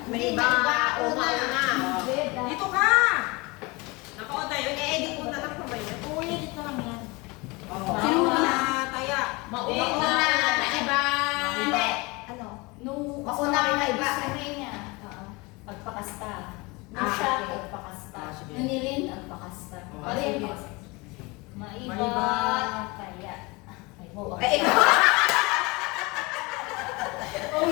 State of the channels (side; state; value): right; quieter; 25.4 dB